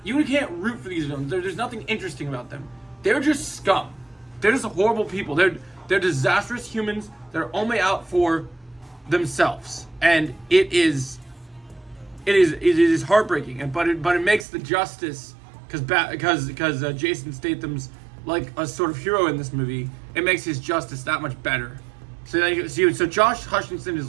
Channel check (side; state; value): left; drops out; at 14.5 s